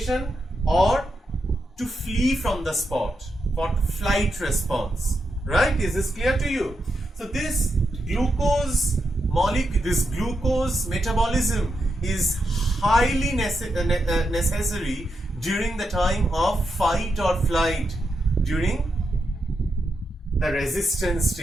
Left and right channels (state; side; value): normal; both; correlation 0.85